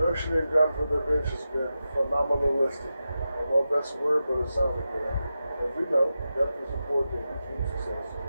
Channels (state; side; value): inverted; both; correlation -0.91